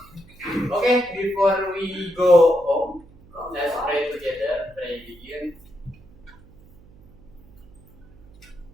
Oke, before we go home, let's pray together. Pray begin.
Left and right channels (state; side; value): noise; right; hum, 25 dB below the sound